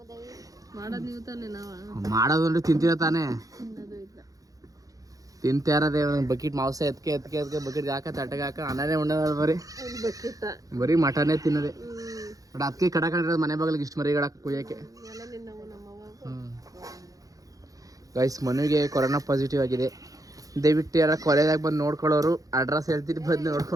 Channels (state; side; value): late; left; 0.17 ms